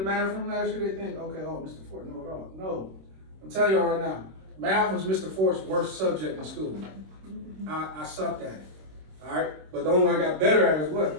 math room last year. They think, okay, oh, Mr. Ford know it all. No. I'm telling y'all right now, math was Mr. Ford's worst subject in school. I sucked at it. Alright? But the only way I got better at it is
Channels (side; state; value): left; late; 26 ms